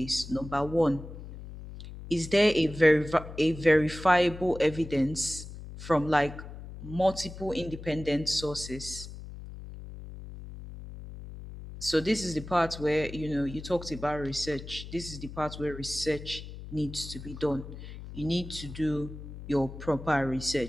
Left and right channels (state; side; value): noise; left; hum, 12 dB below the sound